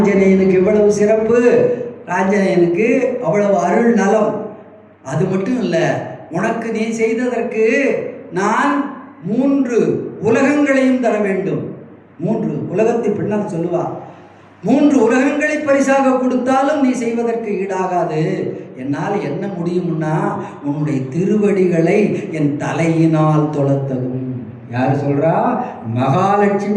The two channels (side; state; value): both; identical; correlation 1.00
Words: இவ்வளவு சிறப்பு, ஆஞ்சநேயனுக்கு அவ்வளவு அருள் நலம். அது மட்டும் இல்லை, உனக்கு நீ செய்ததற்கு நான் 3 உலகங்களையும் தர வேண்டும். 3 உலகத்தை பின்னால் சொல்லுவா, 3 உலகங்களை பரிசாக கொடுத்தாலும் நீ செய்வதற்கு ஈடாகாது. என்னால் என்ன முடியும்னா உன்னுடைய திருவடிகளை என் தலையினால் தொழத்தகும். யார் சொல்றா?